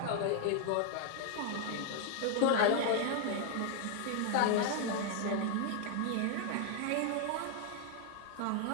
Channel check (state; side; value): different; both; correlation 0.00